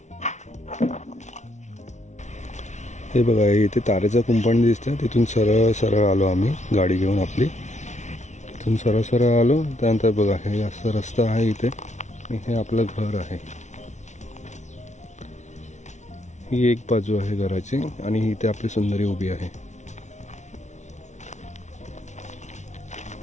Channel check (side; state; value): right; late; 0.34 ms